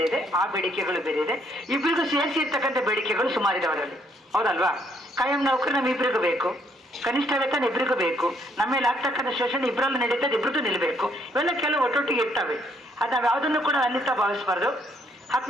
ಇದೆ, ಆ ಬೇಡಿಕೆಗಳು ಬೇರೆ ಇದೆ. ಇಬ್ಬರಿಗೂ ಸೇರಿಸಿ ಇರ್ತಕ್ಕಂಥ ಬೇಡಿಕೆಗಳು ಸುಮಾರಿದೆ ಅವರಲ್ಲಿ, ಹೌದಲ್ವಾ? ಕಾಯಂ ನೌಕರು ನಮ್ಮ ಇಬ್ಬರಿಗೂ ಬೇಕು, ಕನಿಷ್ಠ ವೇತನ ಇಬ್ಬರಿಗೂ ಬೇಕು, ನಮ್ಮ ಮೇಲೆ ಆಗ್ತಕ್ಕಂಥ ಶೋಷಣೆ ಇಬ್ಬರಲ್ಲೂ ನಡೀತದೆ, ಇಬ್ಬರಿಗೂ ನಿಲ್ಲಬೇಕು. ಇವೆಲ್ಲ ಕೆಲವು ಒಟ್ಟೊಟ್ಟಿಗೆ ಇರ್ತವೆ. ಅದು ನಾವು ಯಾವುದನ್ನು ಕೂಡ ಅನ್ಯತಾ ಭಾವಿಸಬಾರ್ದು.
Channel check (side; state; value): both; normal; correlation 0.69